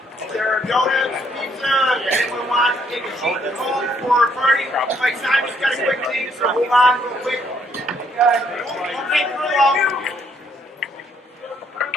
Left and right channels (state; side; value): normal; both; correlation 0.69